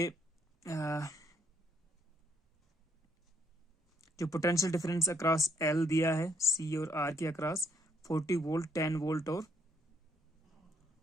जो पोटेंशियल डिफरेंस अक्रॉस L दिया है, C और R के अक्रॉस 40 वोल्ट, 10 वोल्ट और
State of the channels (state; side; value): normal; both; correlation 0.70